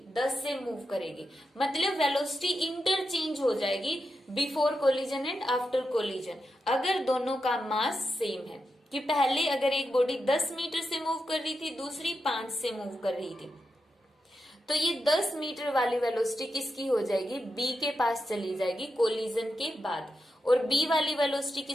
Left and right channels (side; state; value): both; normal; correlation 0.87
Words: 10 से मूव करेगी। मतलब वेलोसिटी इंटरचेंज हो जाएगी before collision and after collision, अगर दोनों का मास सेम है। कि पहले अगर एक बॉडी 10 मीटर से मूव कर रही थी, दूसरी 5 से मूव कर रही थी, तो ये 10 मीटर वाली वेलोसिटी किसकी हो जाएगी, बी के पास चली जाएगी कोलिजन के बाद। और बी वाली वेलोसिटी